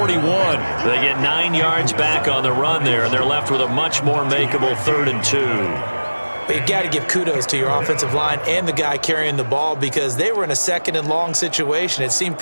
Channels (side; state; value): both; inverted; correlation -1.00